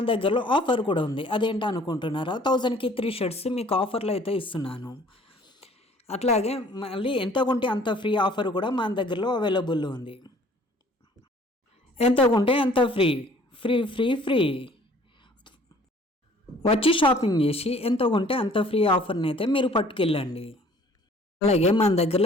దగ్గరలో ఆఫర్ కూడా ఉంది. అదేంటో అనుకుంటున్నారా? 1000కి 3 షర్ట్స్ మీకు ఆఫర్లో అయితే ఇస్తున్నాను. అట్లాగే మళ్ళీ ఎంత కొంటే అంత ఫ్రీ ఆఫర్ కూడా మన దగ్గరలో అవైలబుల్ ఉంది. ఎంత కొంటే అంత ఫ్రీ ఫ్రీ ఫ్రీ ఫ్రీ వచ్చి షాపింగ్ చేసి ఎంత కొంటే అంత ఫ్రీ ఆఫర్ని అయితే మీరు పట్టుకెళ్ళండి. అలాగే మన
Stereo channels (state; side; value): normal; both; correlation 0.54